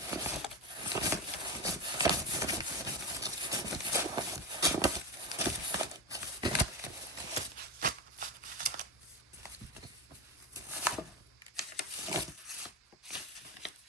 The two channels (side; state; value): both; normal; correlation 0.18